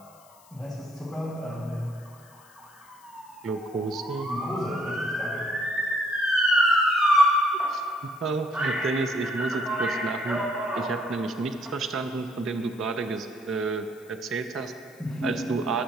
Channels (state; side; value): noise; left; hiss, 27 dB below the sound